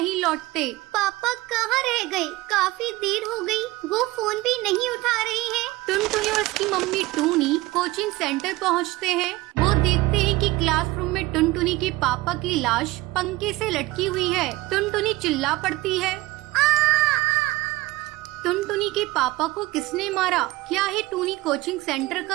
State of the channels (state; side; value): quieter; left; 19.6 dB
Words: लौटते। पापा कहाँ रह गए? काफी देर हो गई, वो फोन भी नहीं उठा रहे हैं। टुनटुनी और उसकी मम्मी टूनी कोचिंग सेंटर पहुंचते हैं। वो देखते हैं कि क्लासरूम में टुनटुनी के पापा की लाश पंखे से लटकी हुई है। टुनटुनी चिल्ला पड़ती है, टुनटुनी के पापा को किसने मारा? क्या है टूनी कोचिंग सेंटर